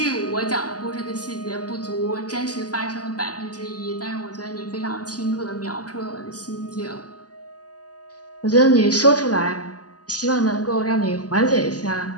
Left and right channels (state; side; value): late; right; 0.68 ms